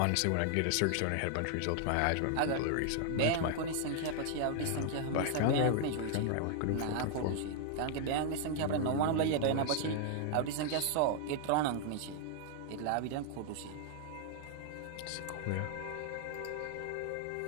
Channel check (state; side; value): different; both; correlation 0.00